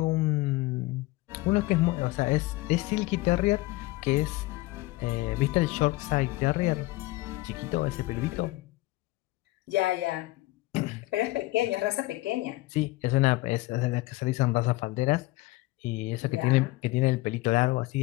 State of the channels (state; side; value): quieter; right; 19.8 dB